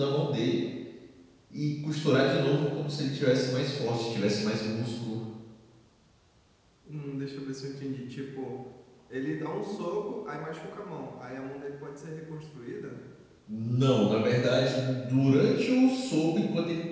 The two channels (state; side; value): identical; both; correlation 1.00